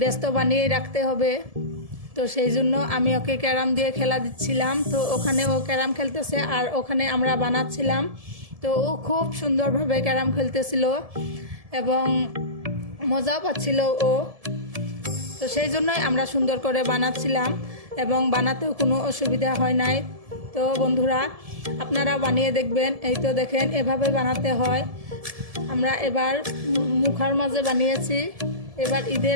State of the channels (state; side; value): late; left; 1.7 ms